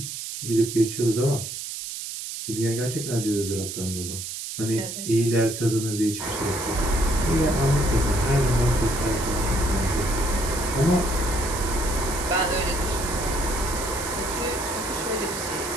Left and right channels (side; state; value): right; noise; hiss, 7 dB below the sound